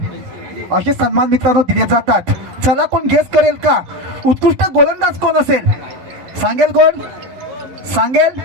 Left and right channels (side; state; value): left; late; 11 ms